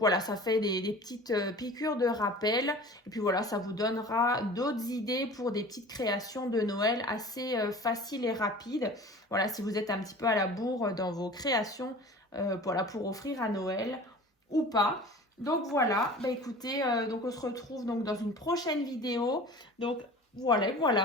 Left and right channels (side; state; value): both; normal; correlation 0.41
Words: ça fait des petites piqûres de rappel. Et puis voilà, ça vous donnera d'autres idées pour des petites créations de Noël assez faciles et rapides. Voilà, si vous êtes un petit peu à la bourre dans vos créations, voilà, pour offrir à Noël ou pas. Donc voilà, bah écoutez, donc on se retrouve donc dans une prochaine vidéo. Donc